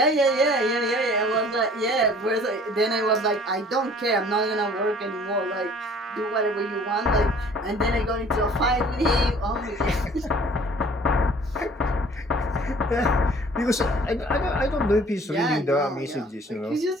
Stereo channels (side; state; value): both; normal; correlation 0.52